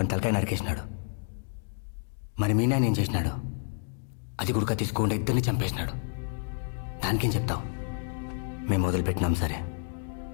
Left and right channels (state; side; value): silent; right; digital silence